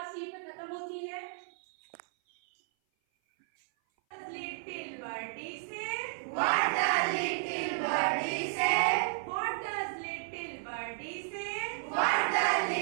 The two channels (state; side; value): silent; left; 56 dB below the other